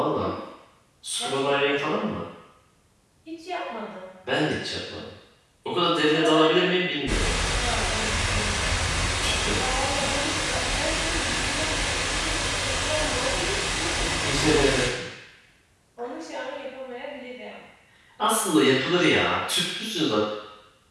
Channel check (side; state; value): both; identical; correlation 1.00